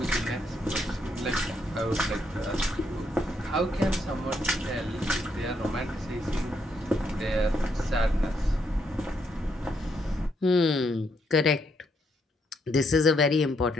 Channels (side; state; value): both; normal; correlation 0.75